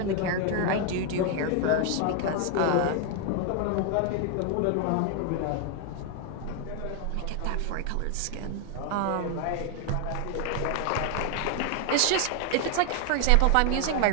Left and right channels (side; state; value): both; different; correlation 0.01